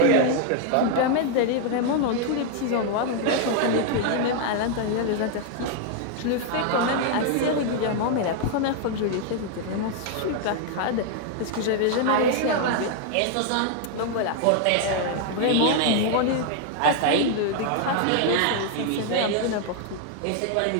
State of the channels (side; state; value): both; different; correlation 0.00